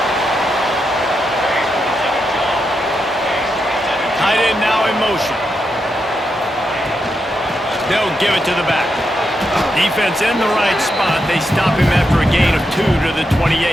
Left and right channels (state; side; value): normal; both; correlation 0.84